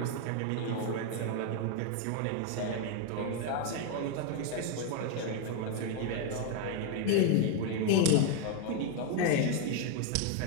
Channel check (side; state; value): both; different; correlation 0.01